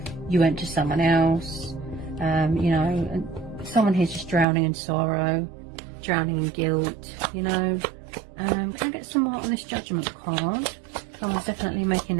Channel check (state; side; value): drops out; left; at 4.5 s